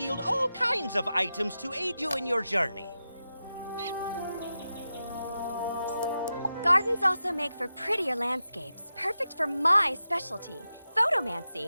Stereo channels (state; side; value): inverted; both; correlation -0.90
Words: all kinds of items to aid you in your journey. Gardens also make for prettier landscapes, perfect for my specialty,